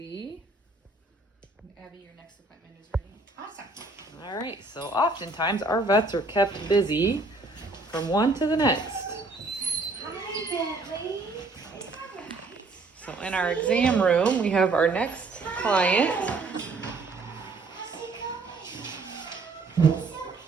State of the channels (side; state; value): left; quieter; 3.5 dB